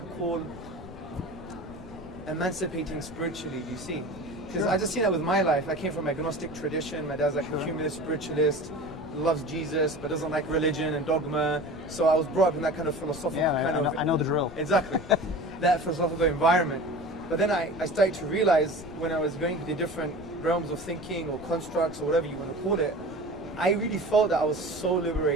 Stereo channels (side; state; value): left; noise; rumble, 16 dB below the sound